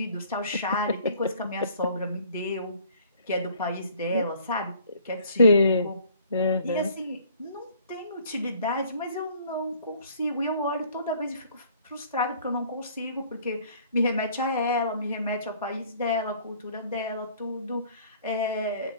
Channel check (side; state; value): both; inverted; correlation -0.56